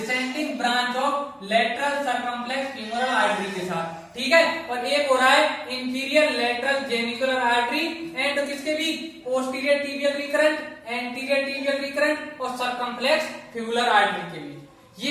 branch of lateral circumflex femoral artery के साथ, ठीक है। और एक हो रहा है inferior lateral genicular artery and किसके भी, posterior tibial recurrent, anterior tibial recurrent और सर्कमफ्लेक्स फिबुलर आर्टरी के बीच। ये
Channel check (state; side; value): identical; both; correlation 1.00